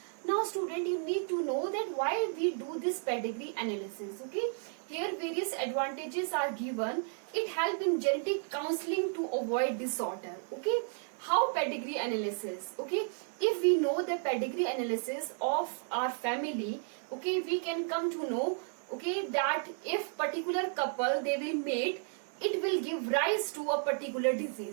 Now student, you need to know that why we do this pedigree analysis. Okay, here various advantages are given. It helps in genetic counseling to avoid disorder. Okay, how pedigree analysis? Okay, if we know the pedigree analysis of our family, okay, we can come to know, okay, that if particular couple they will mate, it will give rise to a particular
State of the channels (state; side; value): silent; left; 56 dB below the other